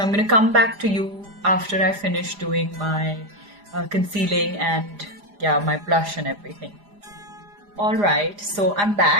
I'm going to come back to you after I finish doing my concealing and my blush and everything. Alright, so I'm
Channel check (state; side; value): late; left; 4.9 ms